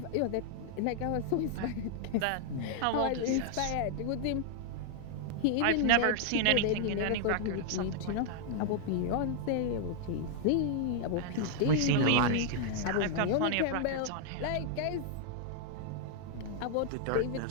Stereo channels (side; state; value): both; different; correlation -0.01